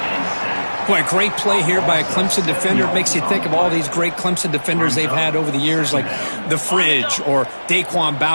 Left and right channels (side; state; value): both; inverted; correlation -1.00